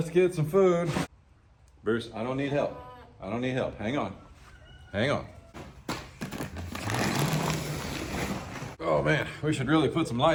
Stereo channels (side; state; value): both; identical; correlation 1.00